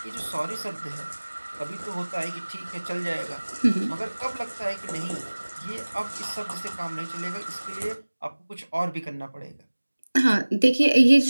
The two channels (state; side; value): inverted; both; correlation -1.00